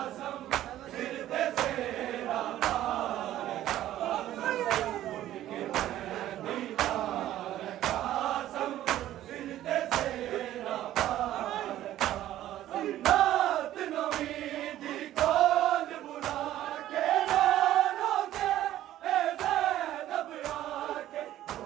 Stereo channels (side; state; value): left; quieter; 13.3 dB